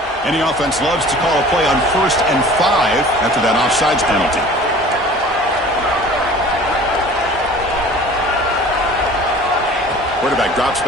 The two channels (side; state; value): both; normal; correlation 0.45